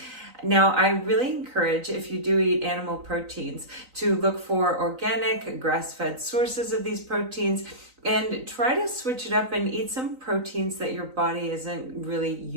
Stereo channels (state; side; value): late; left; 3.9 ms